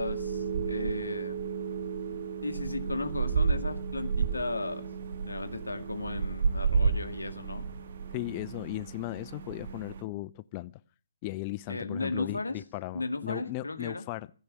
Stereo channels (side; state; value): both; inverted; correlation -0.70